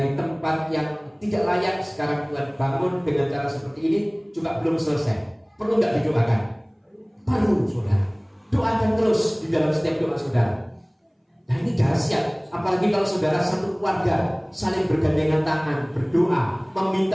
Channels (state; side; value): identical; both; correlation 1.00